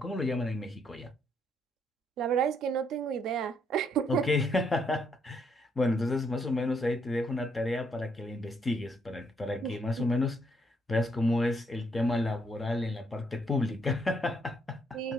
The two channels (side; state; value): both; normal; correlation 0.72